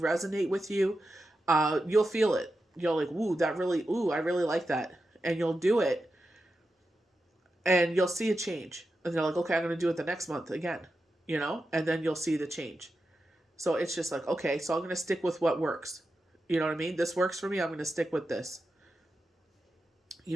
with you. You'll feel it. You're like, I really like that. And you'll do it and you'll see a change. And they're like, okay, I'm going to do it the next month again, and then you'll see the change. So it's just like, okay, so I'm going to stick with what works. You know what I mean? This works for me. I'm going to stick with this.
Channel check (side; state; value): both; normal; correlation 0.90